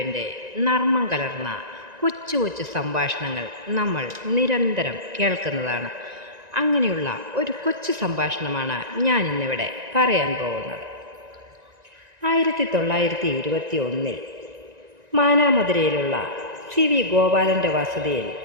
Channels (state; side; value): late; left; 1.9 ms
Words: നർമ്മം കലർന്ന കൊച്ചു കൊച്ചു സംഭാഷണങ്ങൾ നമ്മൾ നിരന്തരം കേൾക്കുന്നതാണ്. അങ്ങനെയുള്ള ഒരു കൊച്ചു സംഭാഷണമാണ് ഞാൻ ഇന്നിവിടെ പറയാൻ പോകുന്നത്. 1921 മാനാമധുരയിലുള്ള സി വി ഗോപാലൻ്റെ വസതിയിൽ